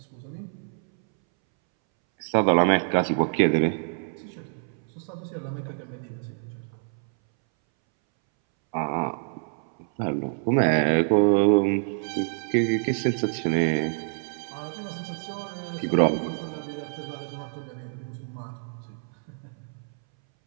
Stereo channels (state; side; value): silent; left; 60 dB below the other